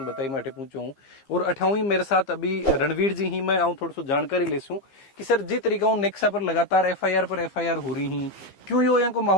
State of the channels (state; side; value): late; right; 15 ms